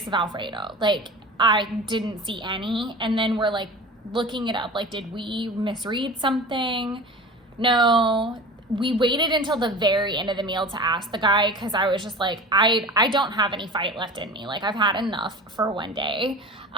of Alfredo. Like, I didn't see any. And then we're like looking it up. Like, did we misread something? No. We waited until the very end of the meal to ask the guy because I was just like, I don't have any fight left in me. Like, I've had enough for one day.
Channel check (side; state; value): both; normal; correlation 0.35